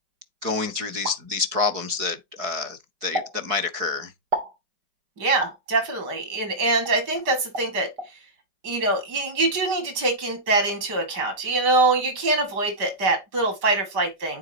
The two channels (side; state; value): left; late; 5.1 ms